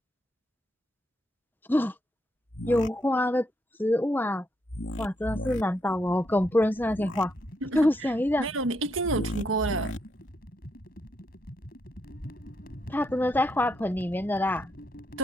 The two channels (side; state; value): both; normal; correlation 0.78